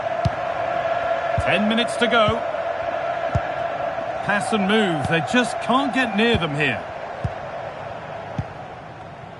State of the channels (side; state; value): both; identical; correlation 1.00